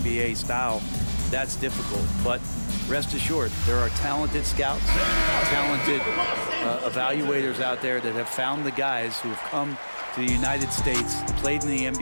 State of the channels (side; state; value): both; inverted; correlation -1.00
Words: style, that's difficult. But rest assured, there are talented scouts, talented evaluators out there that have found the guys who have come to the United States, played in the